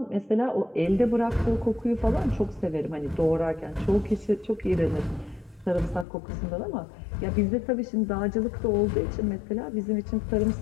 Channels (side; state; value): right; drops out; at 6.1 s